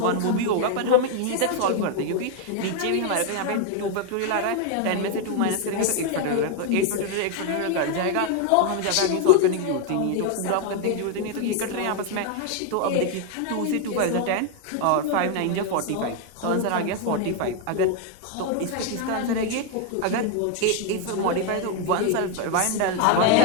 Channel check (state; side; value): different; both; correlation 0.01